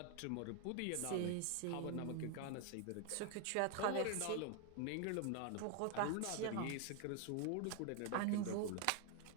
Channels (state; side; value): different; both; correlation 0.01